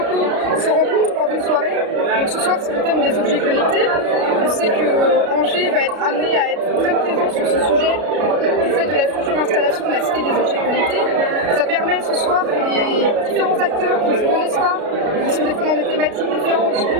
se rencontrent lors d'une soirée. Donc ce soir, c'est le thème des objets connectés. On sait que Angers va être amené à être très présent sur ce sujet du fait de la future installation de la cité des objets connectés. Ça permet ce soir que les différents acteurs qui ne se connaissent pas, qui sont des fois dans des thématiques différentes,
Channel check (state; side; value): late; left; 33 ms